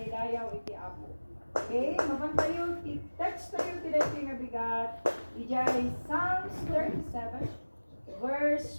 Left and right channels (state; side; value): inverted; both; correlation -1.00